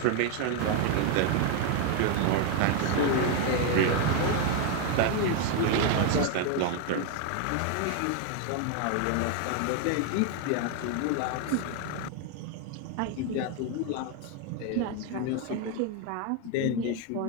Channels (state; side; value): different; both; correlation 0.01